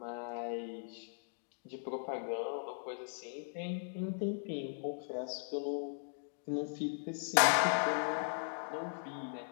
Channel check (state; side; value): silent; right; digital silence